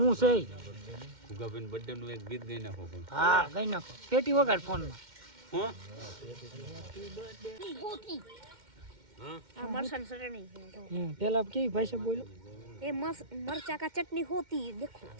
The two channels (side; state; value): left; late; 2.1 ms